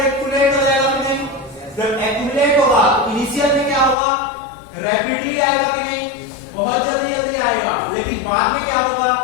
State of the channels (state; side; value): drops out; right; at 4.0 s